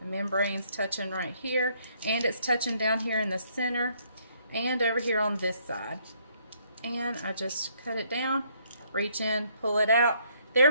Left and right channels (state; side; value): inverted; both; correlation -0.68